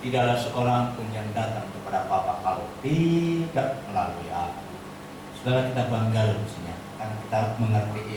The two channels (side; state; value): both; identical; correlation 1.00